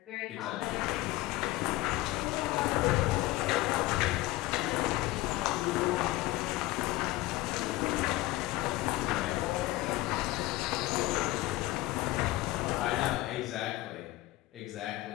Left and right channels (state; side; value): quieter; right; 18.0 dB